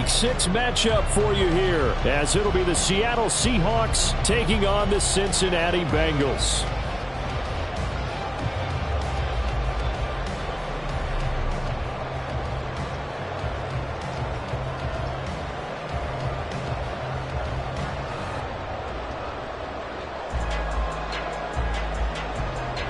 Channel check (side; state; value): both; identical; correlation 1.00